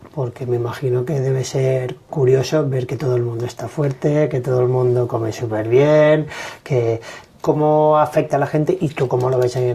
Porque me imagino que debe ser curioso ver que todo el mundo está fuerte, que todo el mundo come súper bien, que ¿cómo afecta a la gente y tú cómo lo ves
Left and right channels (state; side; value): identical; both; correlation 1.00